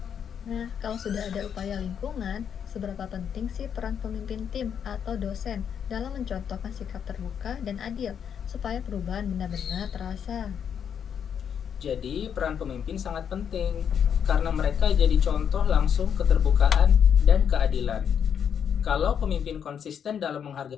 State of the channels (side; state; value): right; quieter; 8.0 dB